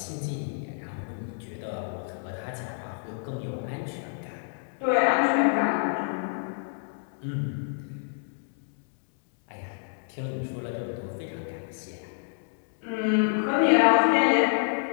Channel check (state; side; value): silent; right; digital silence